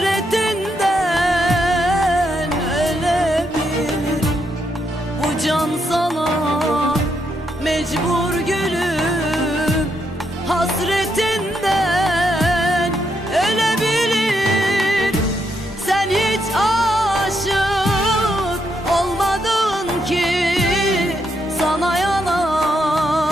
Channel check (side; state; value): both; normal; correlation 0.79